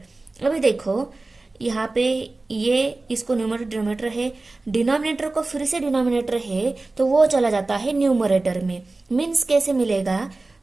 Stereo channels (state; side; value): quieter; left; 3.2 dB